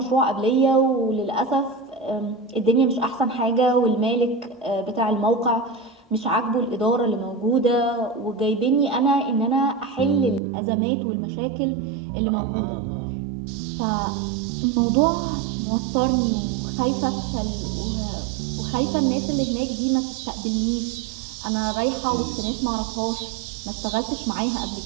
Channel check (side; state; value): left; drops out; at 10.4 s